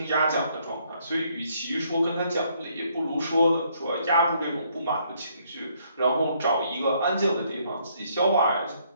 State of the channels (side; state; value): both; inverted; correlation -0.69